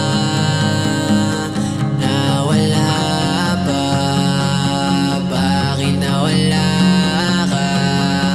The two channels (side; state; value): both; identical; correlation 1.00